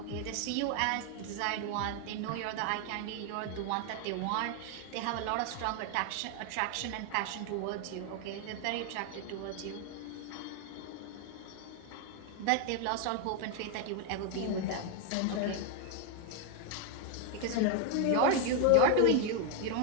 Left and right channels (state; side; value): different; both; correlation 0.01